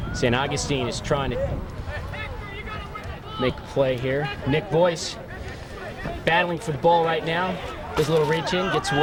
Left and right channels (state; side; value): identical; both; correlation 1.00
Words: St. Augustine is trying to make a play here. Nick Boyce battling for the ball right now. Does a little reach in, gets